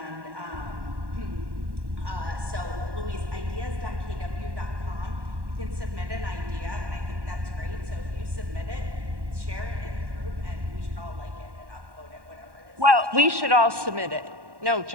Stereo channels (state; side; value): late; left; 1.1 ms